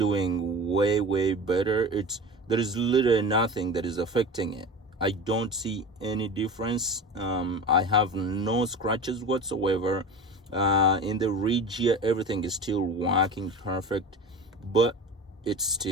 way better. There is literally nothing that is affecting it. I don't see any difference. I have no scratches whatsoever. In the ridge here, everything is still working perfect, but it's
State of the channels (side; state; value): both; normal; correlation 0.32